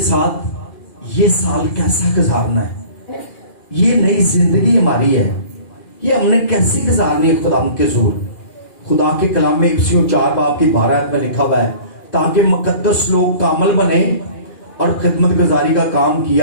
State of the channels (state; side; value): late; right; 2.4 ms